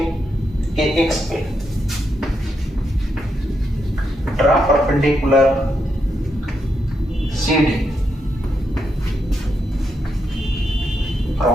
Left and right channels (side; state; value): both; normal; correlation 0.82